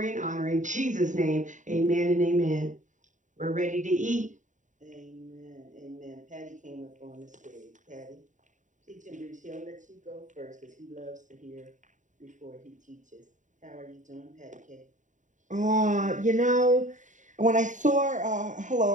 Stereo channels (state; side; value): late; left; 0.36 ms